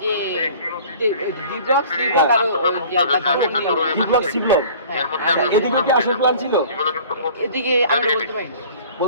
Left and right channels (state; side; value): inverted; both; correlation -0.47